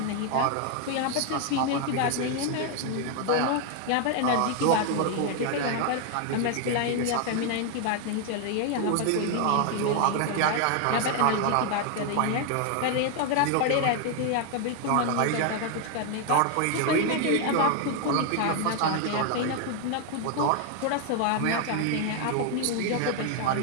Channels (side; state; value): both; different; correlation 0.00